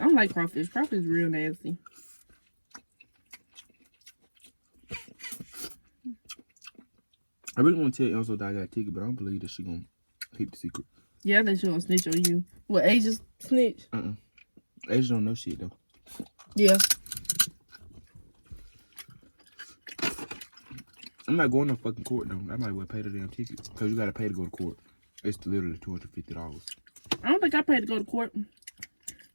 I don't like crawfish. Crawfish is real nasty. I really want to tell Elsa that I got a ticket, but I don't believe that she gonna keep the secret. Yeah, I think she gonna snitch on you. What, Asia's snitch? Asia don't know shit though. Yeah. I'm not going to fucking court though. I might well pay the damn ticket because you gotta pay to go to court. It's literally $250. I don't think I paid to go to court.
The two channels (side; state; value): both; inverted; correlation -1.00